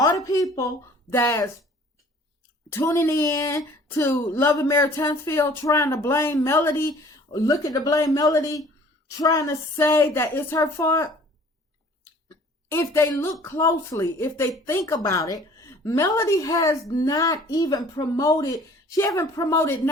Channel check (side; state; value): both; normal; correlation 0.52